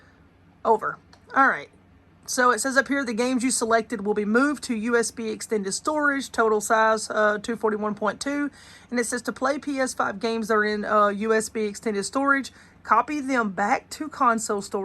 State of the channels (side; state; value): both; identical; correlation 1.00